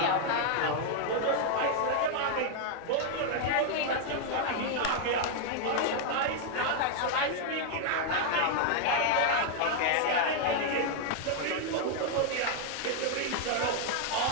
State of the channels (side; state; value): both; different; correlation 0.00